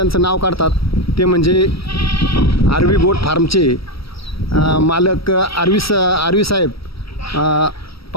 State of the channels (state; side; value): late; right; 0.76 ms